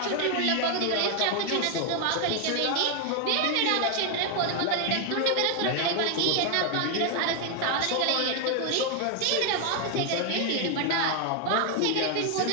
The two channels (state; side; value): different; both; correlation 0.00